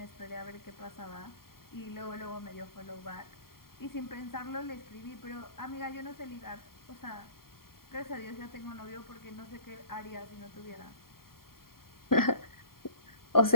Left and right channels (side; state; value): right; late; 0.93 ms